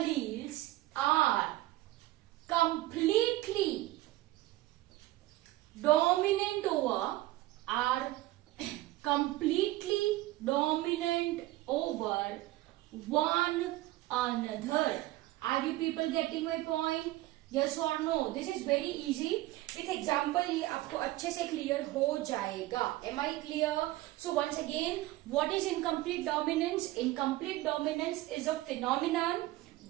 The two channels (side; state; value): left; quieter; 17.4 dB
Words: are completely dominant over one another. Are you people getting my point? Yes or no? This is very easy. With example ये आपको अच्छे से clear हो जाएगा. Am I clear? So once again, what is incomplete dominance? Incomplete dominance is a phenomenon